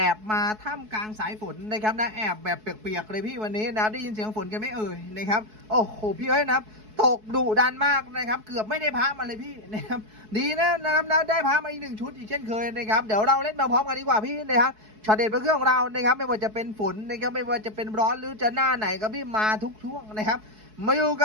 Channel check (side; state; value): left; late; 4.7 ms